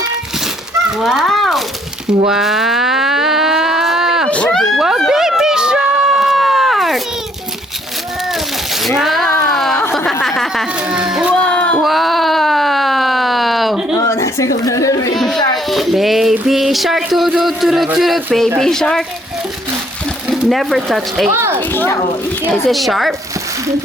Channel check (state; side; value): normal; both; correlation 0.66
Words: Wow. Wow! Wow, baby shark! Wow! Wow! Oh, nasa ko na Baby shark, toot, baby shark. Never touch a. Is it sharp?